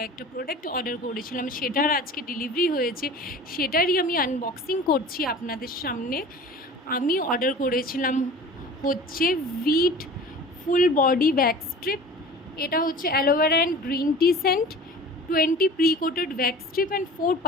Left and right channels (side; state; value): both; normal; correlation 0.40